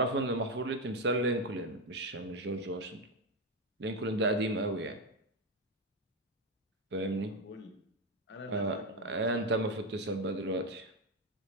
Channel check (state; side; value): normal; both; correlation 0.10